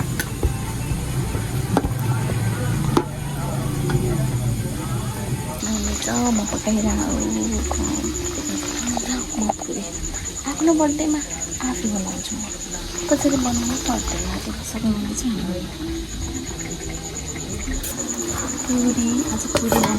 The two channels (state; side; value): identical; both; correlation 1.00